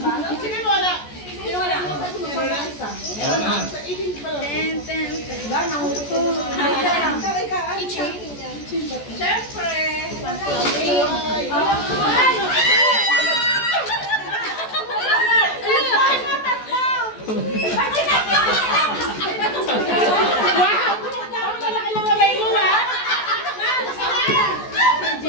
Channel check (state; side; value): late; right; 14 ms